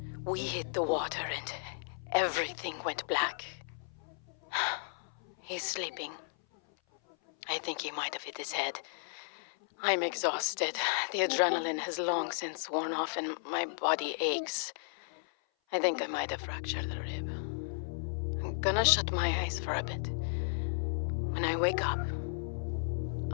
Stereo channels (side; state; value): right; silent; 55 dB below the other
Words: We hit the water and everything went black. He's sleeping. I think he might have hit his head. I'm exhausted. The adrenaline has long since worn off and my body aches. I think I might have fractured a rib. I'm gonna shut my eyes for a bit. When I wake up,